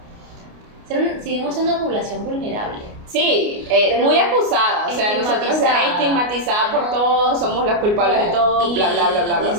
Seguimos siendo una población vulnerable. Sí, muy acusada, o sea, nosotros estigmatizada por todo, somos las culpables de todo, bla, bla, bla, bla, bla.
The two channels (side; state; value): left; late; 29 ms